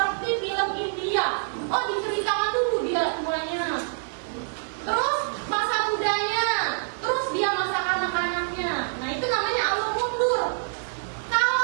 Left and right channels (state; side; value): silent; left; digital silence